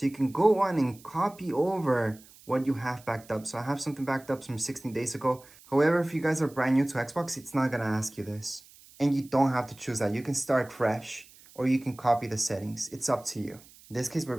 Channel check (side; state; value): right; noise; hiss, 24 dB below the sound